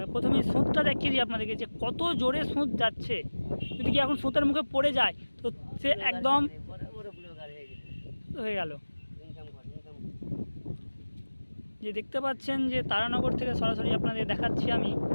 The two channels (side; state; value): both; inverted; correlation -1.00